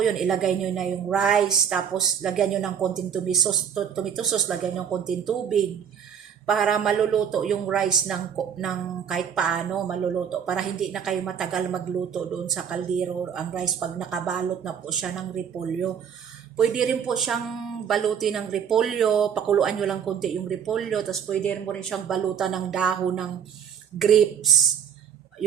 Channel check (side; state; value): left; quieter; 8.0 dB